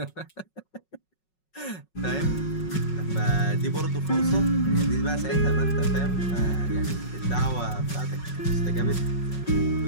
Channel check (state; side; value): late; right; 5.4 ms